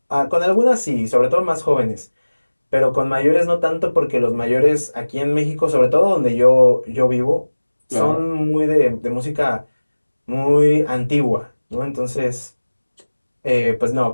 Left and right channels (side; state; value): both; inverted; correlation -1.00